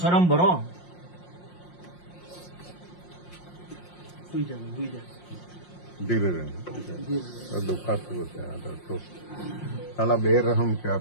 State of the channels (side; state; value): right; late; 5.6 ms